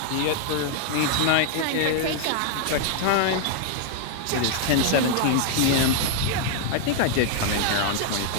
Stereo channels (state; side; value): different; both; correlation 0.00